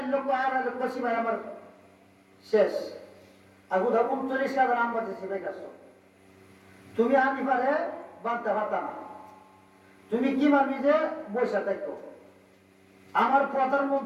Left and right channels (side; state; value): both; identical; correlation 1.00